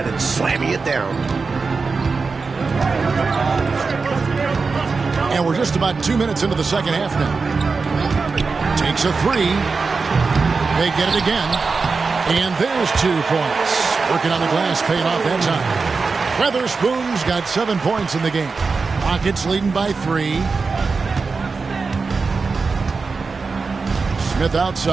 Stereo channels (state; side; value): quieter; left; 4.5 dB